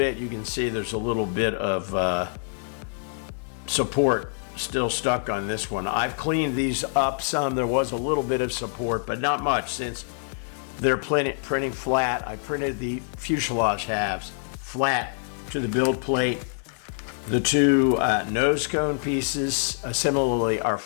you can see there's a little bit of support still stuck on this one. I've cleaned these up some. There was a little bit of support, but not much, since they're printing flat. I printed the fuselage halves flat to the build plate. The two nose cone pieces similarly are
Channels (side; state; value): right; silent; digital silence